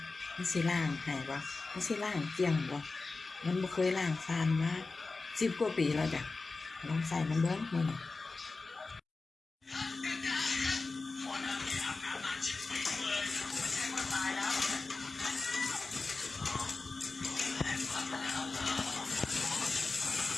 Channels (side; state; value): right; quieter; 3.8 dB